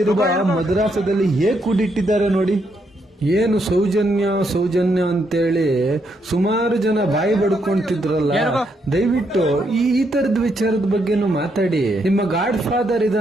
ಮದ್ರಾಸದಲ್ಲಿ ಹೇಗೆ ಕೂಡಿಟ್ಟಿದ್ದಾರೆ ನೋಡಿ. ಏನು ಸೌಜನ್ಯ ಅಂತೇಳಿ ಸುಮಾರು ಜನ ಬಾಯಿ ಬಡ್ಕೊಂತಿದ್ರಲ್ಲ, ದಯವಿಟ್ಟು ಈ ತರದ ವಿಚಾರದ ಬಗ್ಗೆನೂ ಮಾತಾಡಿ. ನಿಮ್ಮ ಗಾಡ್ ಫಾದರ್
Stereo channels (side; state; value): both; normal; correlation 0.77